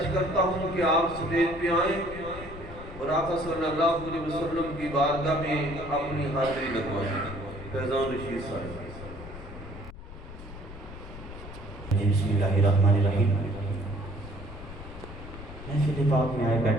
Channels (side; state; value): left; noise; rumble, 13 dB below the sound